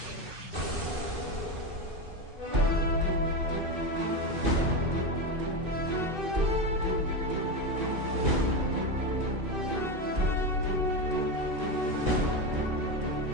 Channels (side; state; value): left; late; 2.6 ms